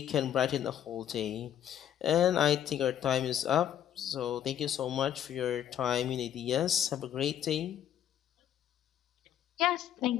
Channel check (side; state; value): right; quieter; 10.5 dB